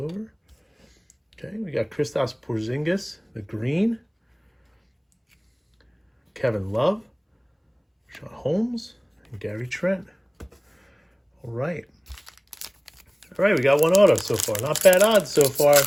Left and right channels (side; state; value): both; identical; correlation 1.00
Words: Okay, we got Kristaps Porzingis, the green. Kevin Love, Sean Holmes, and Gary Trent. All right. All right, we got one auto so far. Not bad odds so far.